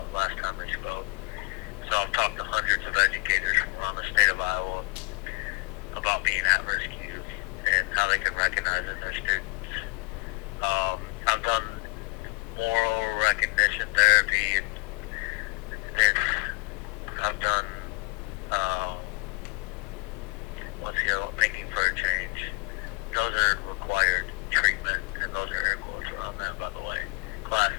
last time that you spoke. So I've talked to hundreds of educators from around the state of Iowa about being at-risk youth and how they can recognize in their students. I've done moral recognition therapy. I've done thinking for a change. Those are required treatment, and those are air quotes around that, by the way. Classes.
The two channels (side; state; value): right; quieter; 30.8 dB